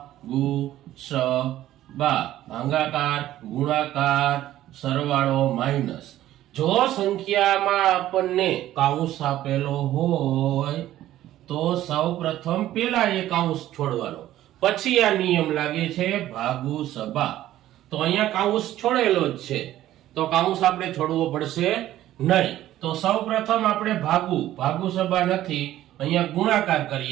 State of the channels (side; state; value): left; quieter; 13.7 dB